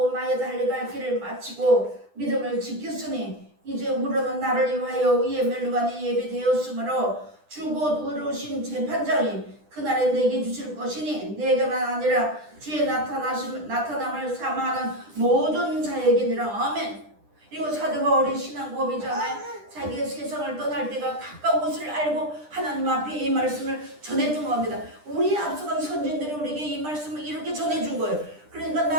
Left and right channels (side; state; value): left; late; 10 ms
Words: 나의 달려갈 길을 마치고 믿음을 지켰으니 이제 우러는 나를 위하여 이에 멸류관이 예비되었으므로 주 곧 의로우신 재판장이 그날에 내게 주실 것이니 내게만 아니라 주의 나타남을 사모하는 모든 자에게니라. 아멘. 이거 사도 바울의 신앙 고백이잖아요. 자기가 세상을 떠날 때가 가까운 것을 알고 하나님 앞에 이 말씀을 전해준 겁니다. 우리 앞서간 선진들이 우리에게 이 말씀을 이렇게 전해준 거예요. 그러니까